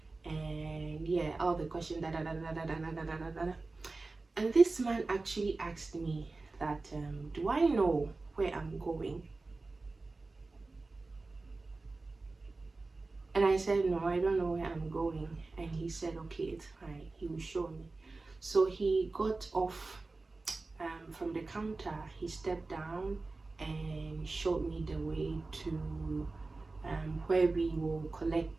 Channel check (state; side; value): quieter; left; 3.5 dB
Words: and yeah, all the questions. And this man actually asked me that, do I know where I'm going? And I said, no, I don't know where I'm going. And he said, okay, it's fine, he will show me. So he got off from the counter. He stepped down and showed me the way to where we will